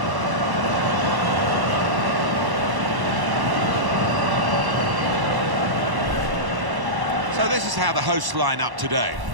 So this is how the hosts line up today.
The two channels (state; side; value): late; left; 1.1 ms